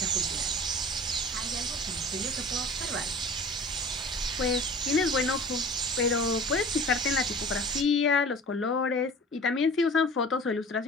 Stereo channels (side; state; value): both; normal; correlation 0.41